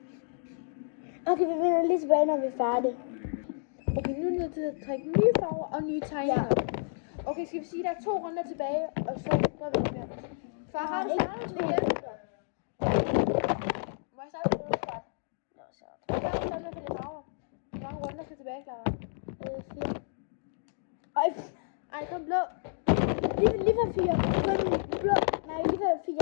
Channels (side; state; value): right; silent; digital silence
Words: Okay, vi vender lige tilbage, når vi er færdige. Okay, nu er det nødt til at trække nye farver og nye tegninger. Okay, skal vi sige, at der er 2 runder tilbage, og så gør vi det mere. Far, har du startet med igen? Må jeg starte med det? Hvad har du startet med for de farver? Hvor mange runder skal tilbage, Clara? 4. Ej, kom blå. Lige for 4. Kun blå. Nej, lige for 4.